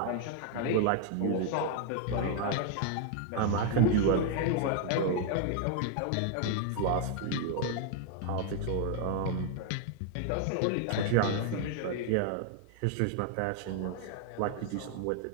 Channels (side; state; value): both; different; correlation 0.00